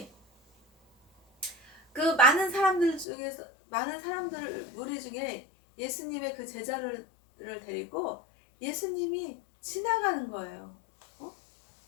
그 많은 사람들 무리 중에 예수님의 그 제자를 데리고 예수님이 지나가는 거예요.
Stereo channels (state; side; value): drops out; right; at 3.1 s